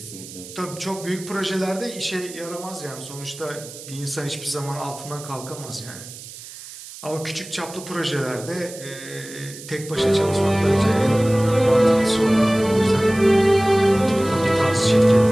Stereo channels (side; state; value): right; noise; hiss, 15 dB below the sound